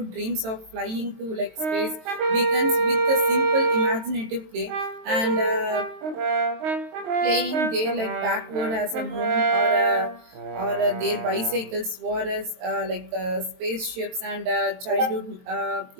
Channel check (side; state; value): left; late; 22 ms